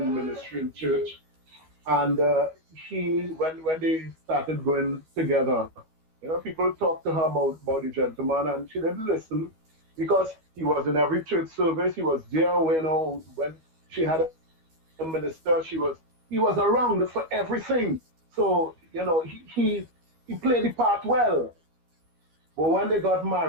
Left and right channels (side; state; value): left; late; 12 ms